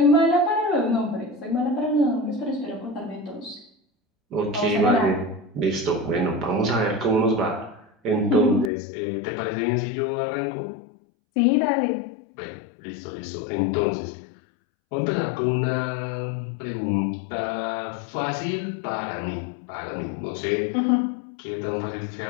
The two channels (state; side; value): drops out; right; at 8.7 s